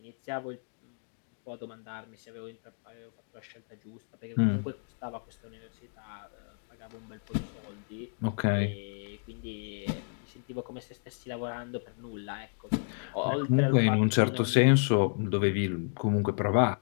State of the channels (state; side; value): silent; right; digital silence